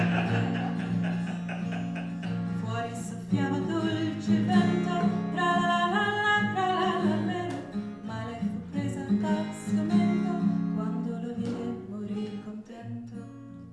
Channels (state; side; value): identical; both; correlation 1.00